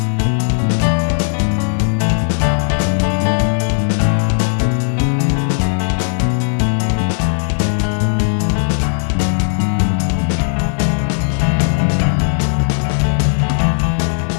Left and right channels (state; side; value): silent; right; digital silence